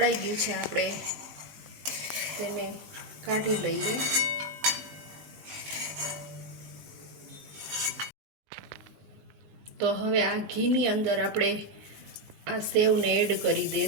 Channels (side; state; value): left; late; 19 ms